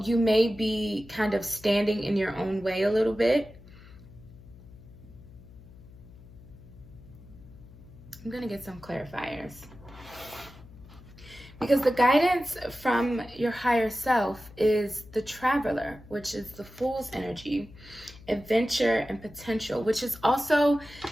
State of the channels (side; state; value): left; noise; hum, 20 dB below the sound